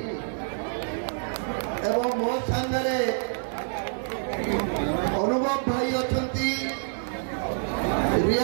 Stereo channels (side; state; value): left; silent; digital silence